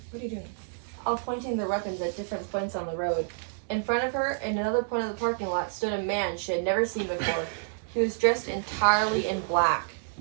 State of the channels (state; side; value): silent; left; digital silence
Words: What are you doing? All pointing their weapons at different points on the road. In front of her, in another point of the parking lot, stood a man she had never seen before. He was dressed entirely in black.